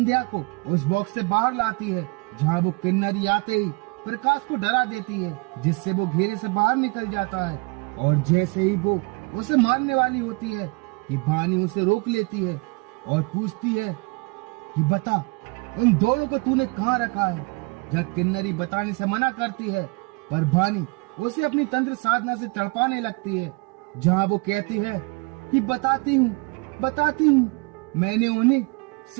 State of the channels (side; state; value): left; quieter; 28.8 dB